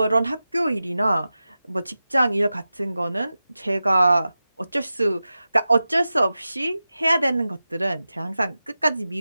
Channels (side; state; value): both; inverted; correlation -0.94